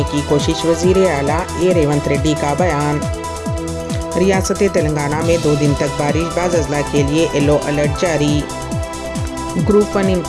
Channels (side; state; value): both; identical; correlation 1.00